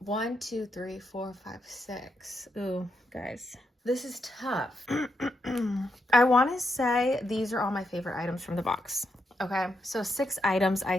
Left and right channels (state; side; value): normal; both; correlation 0.82